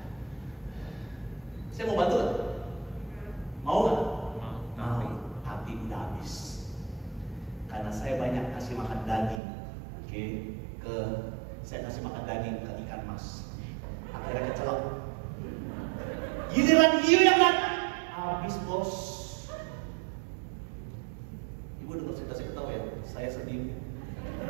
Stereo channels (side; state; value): left; drops out; at 9.4 s